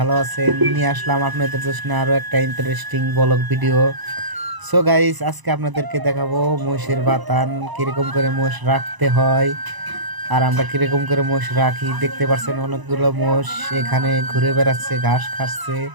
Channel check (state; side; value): late; left; 1.0 ms